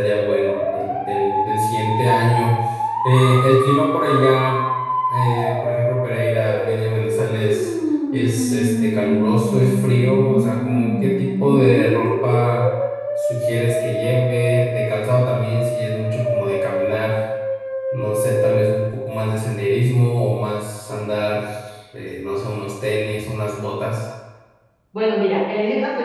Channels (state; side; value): identical; both; correlation 1.00